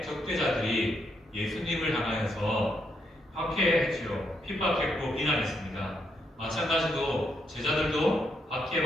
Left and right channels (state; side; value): normal; both; correlation 0.78